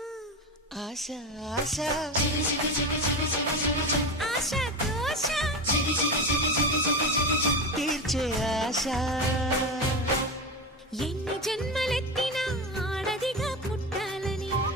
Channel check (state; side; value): normal; both; correlation 0.21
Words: ఆశ ఆశ ఆశ దోష తీర్చే ఆశ. ఎన్ని జన్మలెత్తినా ఆడదిగా పుట్టాలని,